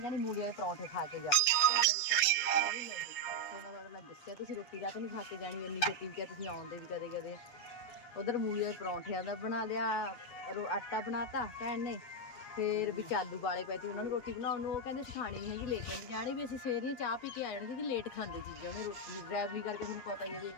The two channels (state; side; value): late; right; 7.8 ms